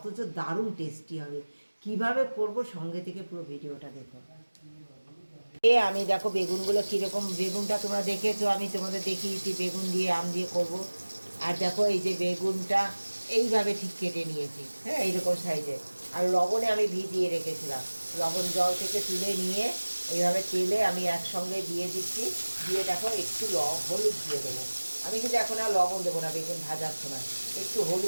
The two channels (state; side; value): inverted; both; correlation -1.00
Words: দারুণ টেস্টি হবে। কিভাবে করব সঙ্গে থেকে পুরো ভিডিওটা দেখো। আমি দেখো বেগুনগুলো কীরকম, বেগুনটা তোমরা দেখেছো, আমি তোমাদের দেখিয়েছি বেগুন দিয়ে আম দিয়ে করব। আর দেখো এই যে বেগুনটা এইভাবে ঠিক কেটে নিয়েছি, হ্যাঁ এইরকম সাইজে। আর লবণে আমি ভিজিয়ে রেখেছিলাম, লবণ জল থেকে তুলে নিয়ে এইভাবে তেলে আমি একসঙ্গে দিয়ে দিচ্ছি। দিয়ে দেখো একটু হলুদ দিয়ে দেবো। আমি কিন্তু এখন আর লবণ দেবো না বেগুন ভাজার সময়, একটু